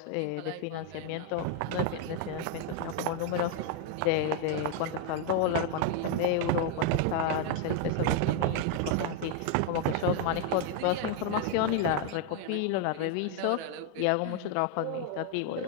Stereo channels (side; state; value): both; different; correlation 0.00